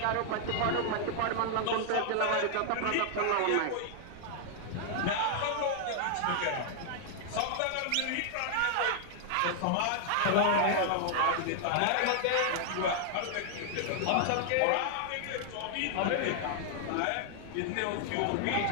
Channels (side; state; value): both; different; correlation 0.00